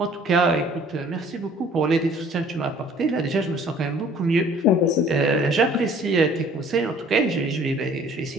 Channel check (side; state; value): both; normal; correlation 0.54